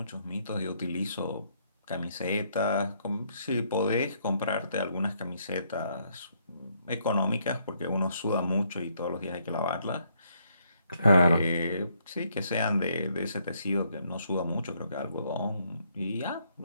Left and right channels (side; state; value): both; inverted; correlation -0.72